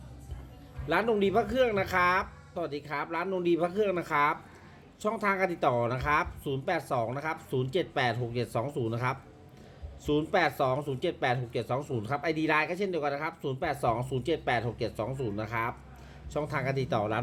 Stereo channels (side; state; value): both; identical; correlation 1.00